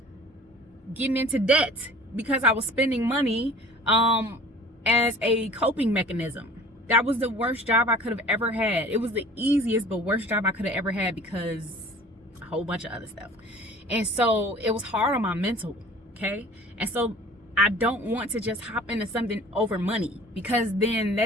getting into debt because I was spending money as a coping mechanism. That was the worst job I could have ever had. It was the easiest but worst job I could have ever had because a whole bunch of other stuff. And so it was hard on my mental, okay? And so I don't want to just hop into something over money, because then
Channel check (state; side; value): normal; both; correlation 0.46